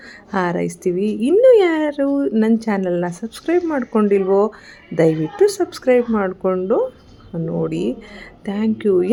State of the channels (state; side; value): identical; both; correlation 1.00